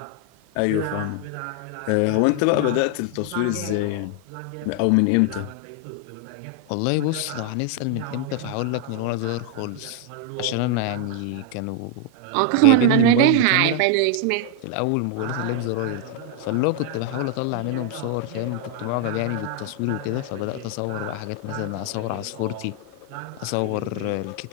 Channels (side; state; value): both; different; correlation 0.00